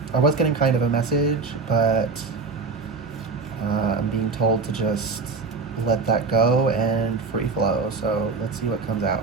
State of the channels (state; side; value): quieter; left; 4.2 dB